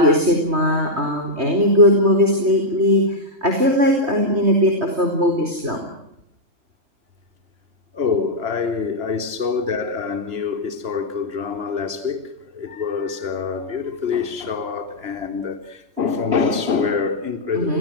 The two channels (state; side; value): late; left; 2.9 ms